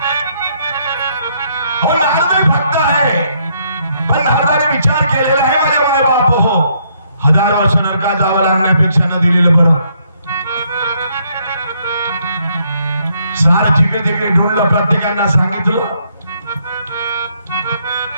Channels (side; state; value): both; inverted; correlation -0.71